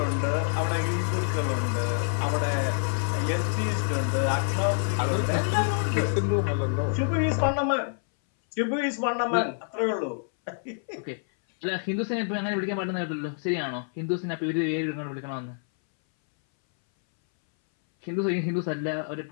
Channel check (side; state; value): right; silent; 60 dB below the other